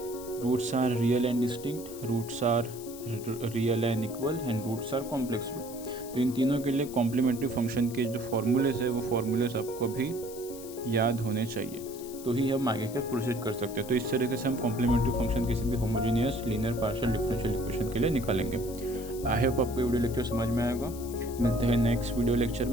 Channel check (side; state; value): left; noise; hiss, 15 dB below the sound